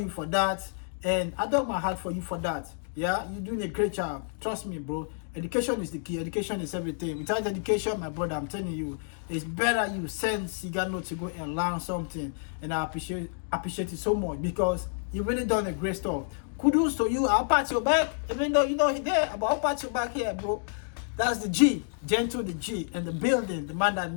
for that, and I dug my heart for you for that. Yeah, you're doing a great job. Trust me, bro. Education is the key. Education is everything. Without education, my brother, I'm telling you, it's better you send Sigano to go and learn something. And I appreciate it so much because you really done a great stuff. Kudos to you. I'll pat your back, even though you know he's there, but I'll pat your back here, bro. That's the G, Gentle the G, and the building, the man that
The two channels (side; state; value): right; silent; digital silence